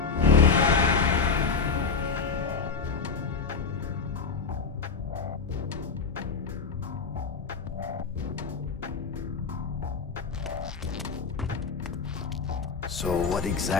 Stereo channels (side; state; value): right; quieter; 5.3 dB